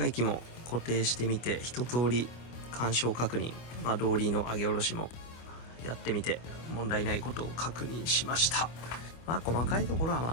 機も固定してみて、一通り干渉確認、動輪の上げ下ろしもやってみて問題ないことを確認しました。細かいところはま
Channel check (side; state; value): right; late; 25 ms